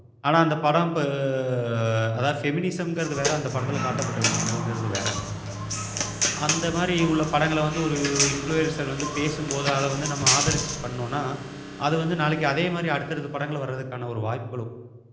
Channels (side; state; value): both; identical; correlation 1.00